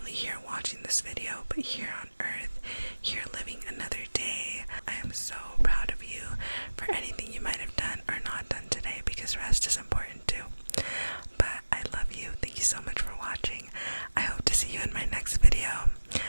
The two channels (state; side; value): inverted; both; correlation -1.00